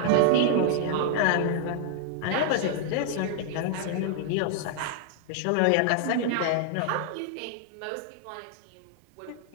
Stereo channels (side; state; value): both; different; correlation -0.01